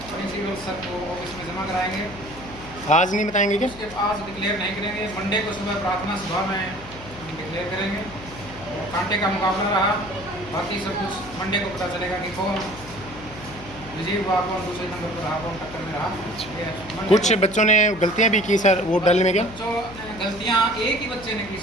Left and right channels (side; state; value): left; noise; hum, 17 dB below the sound